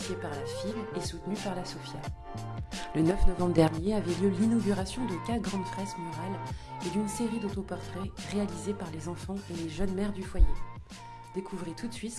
par la FIL et soutenue par la SOFIA. Le 9 novembre dernier avait lieu l'inauguration de 4 grandes fresques murales et d'une série d'autoportraits réalisés par les enfants et les jeunes mères du foyer. Découvrez tout de suite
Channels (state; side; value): identical; both; correlation 1.00